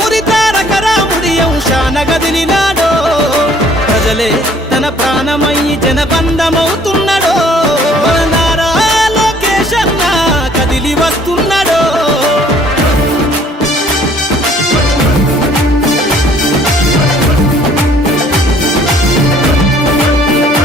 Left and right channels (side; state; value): both; normal; correlation 0.58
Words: తారక రాముడి అంశాన గదిలినాడో ప్రజలే తన ప్రాణమయ్యి జనబంధమవుతున్నాడో మన నారా లోకేష్ అన్న కదిలి వస్తున్నాడో